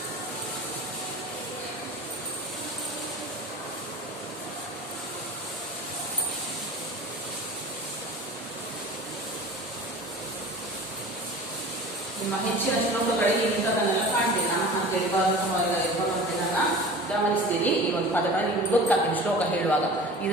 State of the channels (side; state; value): both; normal; correlation 0.39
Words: ನಿಮ್ಮ ಹೆಚ್ಚಿನ ಶ್ಲೋಕಗಳಿಗೆ ಇಂಥದನ್ನೆಲ್ಲ ಕಾಣ್ತೀನಿ. ನಾನು ಅಂತೇಳಿ ಭಗವಂತನನ್ನ ಗಮನಿಸ್ತೀರಿ. ಈ ಒಂದು ಪದಗಳನ್ನು ನಿಮ್ಗೆ ಗೊತ್ತಾಗ್ತೀನಿ ಶ್ಲೋಕ ಹೇಳುವಾಗ. ಇದು